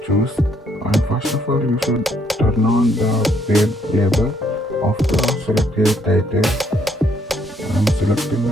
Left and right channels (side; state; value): both; normal; correlation 0.70